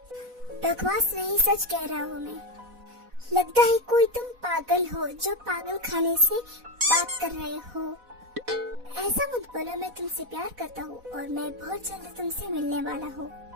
बकवास नहीं, सच कह रहा हूँ मैं। लगता है कोई तुम पागल हो जो पागल खाने से बात कर रहे हो। ऐसा मत बोलो, मैं तुमसे प्यार करता हूँ और मैं बहुत जल्द तुमसे मिलने वाला हूँ।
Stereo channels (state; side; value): late; left; 4.1 ms